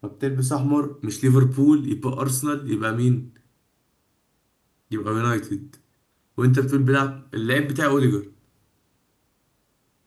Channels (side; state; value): both; identical; correlation 1.00